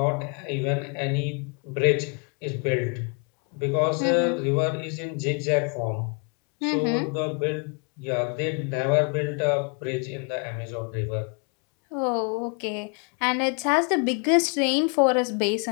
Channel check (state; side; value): quieter; right; 36.7 dB